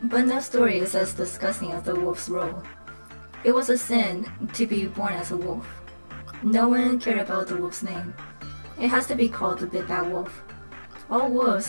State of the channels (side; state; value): both; inverted; correlation -1.00